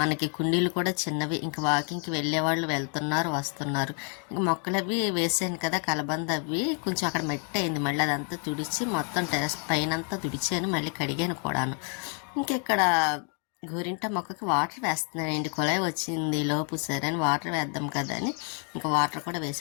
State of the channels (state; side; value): quieter; right; 38.4 dB